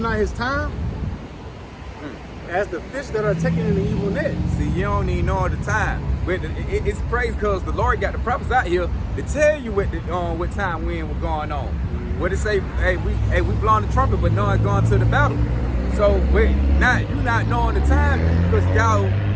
his time, as the fish that are taken in the evil net. See, you don't even know the time. But it's crazy because the Lord got the prophets out here to tell you what time when was going on. What it say? Hey, we blowing the trumpet, but no one's going to the battle. So wait, you not knowing the time because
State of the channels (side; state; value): both; identical; correlation 1.00